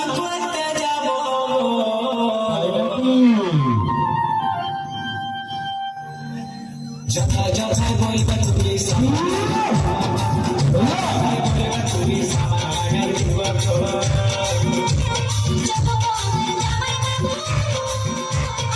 করতে যাব তাই নাকি? যথায় যথায় বলবে তুমি তুমি সামান লাগাই দিব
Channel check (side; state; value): both; identical; correlation 1.00